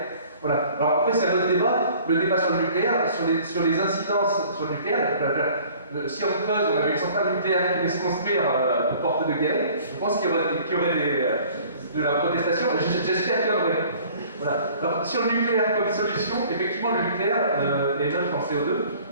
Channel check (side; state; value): both; inverted; correlation -0.51